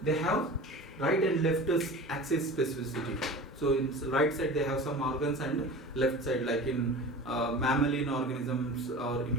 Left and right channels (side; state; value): both; normal; correlation 0.35